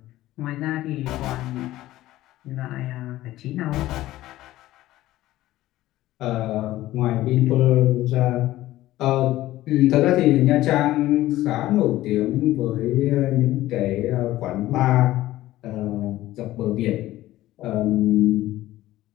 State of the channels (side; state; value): right; quieter; 15.6 dB